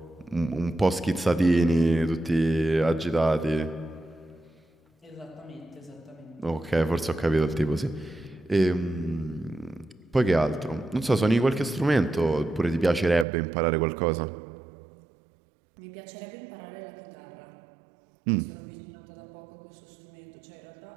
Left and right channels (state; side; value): drops out; left; at 13.2 s